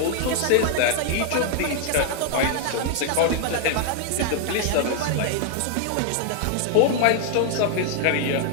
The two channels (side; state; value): both; different; correlation 0.00